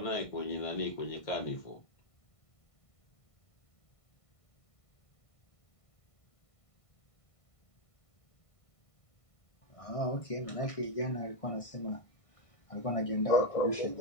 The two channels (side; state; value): right; late; 1.5 ms